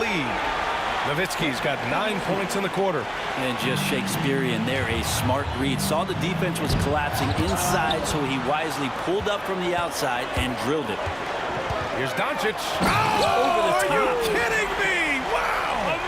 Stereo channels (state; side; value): identical; both; correlation 1.00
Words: Nowitzki's got 9 points in the quarter. And just Shakespearean there, a smart read. Saw the defense was collapsing inside, so he wisely pulled up from the outside and drilled it. Here's Doncic. Oh, are you kidding me? Wow.